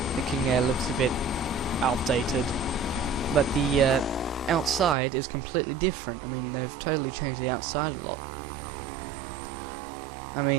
the King Air looks a bit outdated, but the outside is completely different. I mean, they've totally changed the outside a lot. I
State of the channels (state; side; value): drops out; left; at 5.0 s